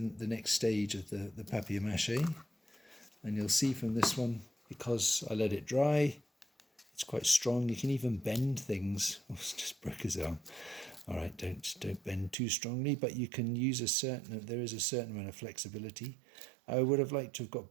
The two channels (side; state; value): left; drops out; at 12.4 s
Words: next stage of the PapiMache. And you'll see from this one, because I let it dry, it's quite strong. You can even bend things. Oh, it's just broke his arm. All right, don't bend too strongly, but you can use there is a certain amount of flexibility. I would have liked to have